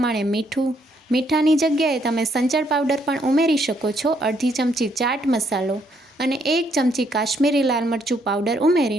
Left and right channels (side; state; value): both; normal; correlation 0.72